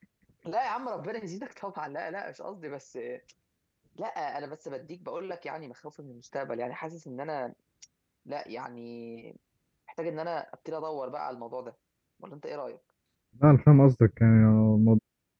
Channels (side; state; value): both; identical; correlation 1.00